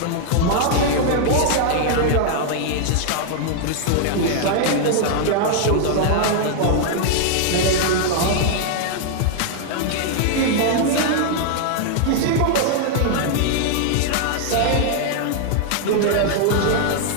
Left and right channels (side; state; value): both; different; correlation -0.01